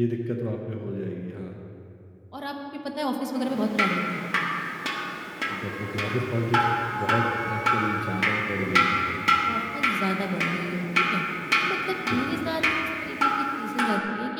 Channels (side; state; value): both; identical; correlation 1.00